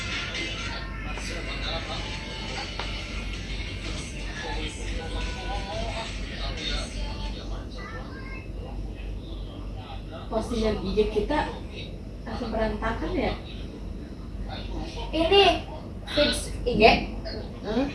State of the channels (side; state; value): both; identical; correlation 1.00